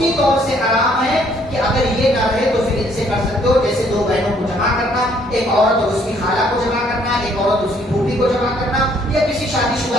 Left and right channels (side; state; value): both; normal; correlation 0.64